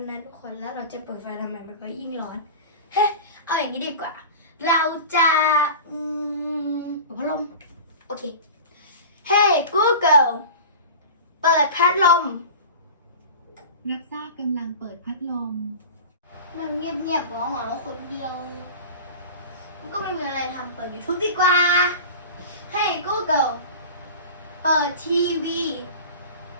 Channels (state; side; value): inverted; both; correlation -0.34